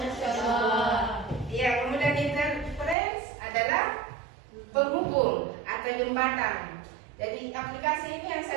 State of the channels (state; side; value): drops out; left; at 3.0 s